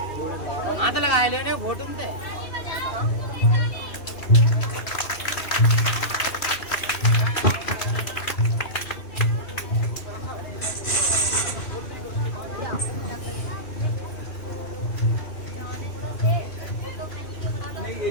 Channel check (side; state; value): right; late; 2.9 ms